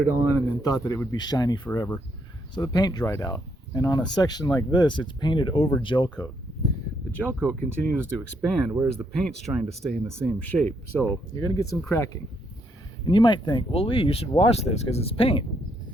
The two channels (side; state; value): both; normal; correlation 0.75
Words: on and then thought that it would be shiny forever. So the paint dried out. And on a section like this, it's painted over gel coat. The gel coat continues to expand, whereas the paint's trying to stay in the same shape. So you're going to get some cracking. And you might think, well, Lee, you should wash this because it's paint.